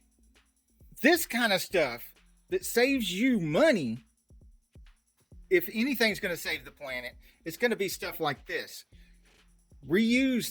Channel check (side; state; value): both; identical; correlation 1.00